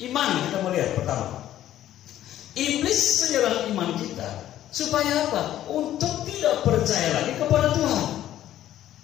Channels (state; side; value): quieter; right; 12.5 dB